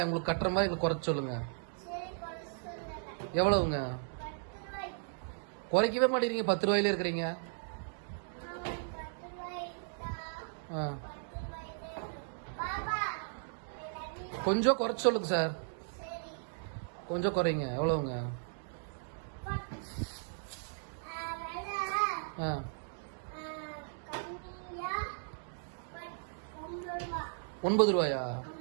உங்களுக்கு கட்டுற மாதிரி குறைச்சு சொல்லுங்க. எவ்வளவுங்க? குறைக்கவே மாட்டேங்கிறீங்க, 10 ரூபாயில இருக்கிறீங்க. கொஞ்சம் குறைச்சு சொல்லுங்க சார், கொஞ்சம் குறைங்க. எவ்வளவுங்க? 9 ரூபாயா?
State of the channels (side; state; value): left; silent; digital silence